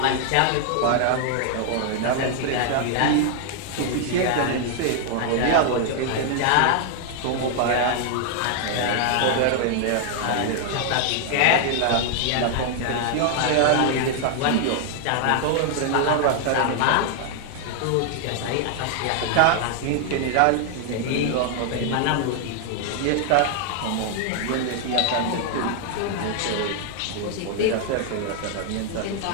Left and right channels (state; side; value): different; both; correlation 0.00